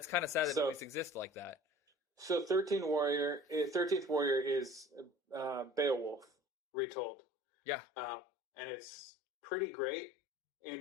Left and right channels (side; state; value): right; drops out; at 6.3 s